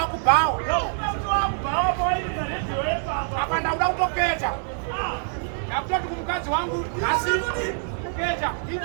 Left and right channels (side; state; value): left; silent; digital silence